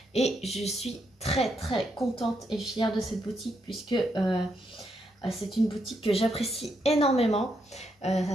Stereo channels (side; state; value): both; normal; correlation 0.79